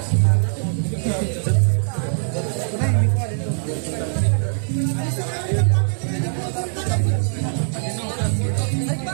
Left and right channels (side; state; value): left; silent; 65 dB below the other